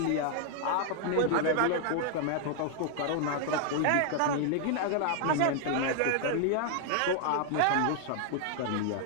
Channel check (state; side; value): different; both; correlation 0.00